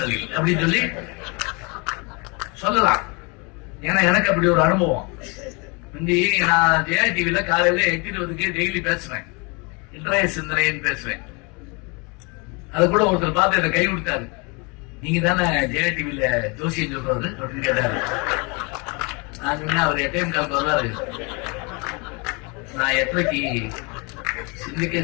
அப்படின்னு சொல்லி சொல்லலாம். ஏன்னா எனக்கு அப்படி ஒரு அனுபவம். நான் ஜெயா டிவில காலையில 8:20 டெய்லி பேசுவேன், இன்றைய சிந்தனைன்னு பேசுவேன். அது கூட ஒருத்தர் பார்த்து என்ன கை கொடுத்தாரு. நீங்க தானே ஜெயா டிவில ஜோசியம் சொல்றது அப்படின்னு கேட்டாரு. நான் சொன்னேன் அவர் 8:15 வருவாரு, நான் 8:30 சிந்திக்க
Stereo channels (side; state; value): right; quieter; 30.4 dB